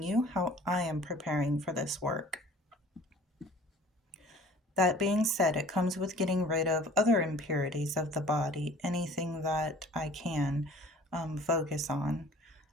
you how I am preparing for this work. That being said, it comes with getting rid of other impurities of the body, anything that I can focus on.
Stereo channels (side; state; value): both; normal; correlation 0.49